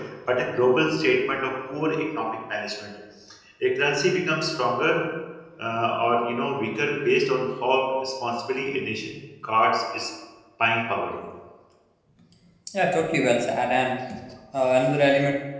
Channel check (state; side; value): identical; both; correlation 1.00